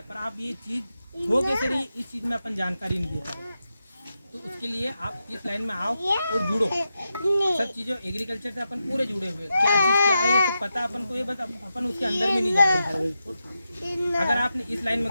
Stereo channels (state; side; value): inverted; both; correlation -0.88